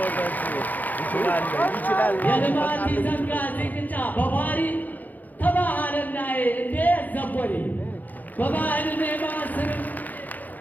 የልማት ዘንጋ ዚቅጫ በባሪ ተባህልና እንዴ ዘቦሪ በባህል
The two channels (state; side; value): late; right; 0.082 ms